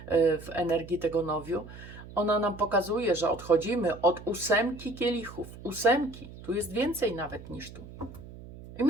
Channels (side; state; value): right; noise; hum, 16 dB below the sound